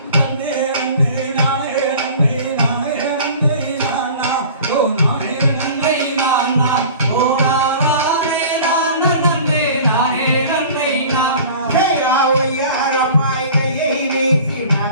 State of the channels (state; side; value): inverted; both; correlation -0.43